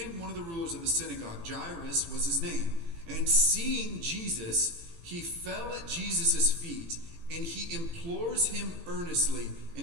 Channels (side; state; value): left; late; 18 ms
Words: one of the rulers of the synagogue. Jairus was his name. And seeing Jesus, he fell at Jesus' feet, and he implores him earnestly.